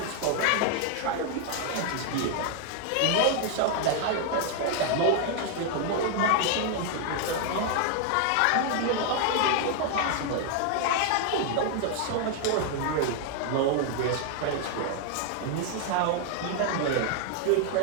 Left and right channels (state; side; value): different; both; correlation 0.00